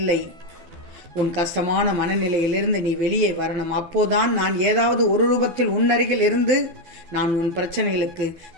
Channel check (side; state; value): left; late; 12 ms